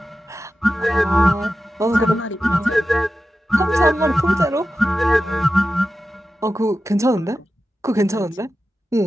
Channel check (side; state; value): both; normal; correlation 0.93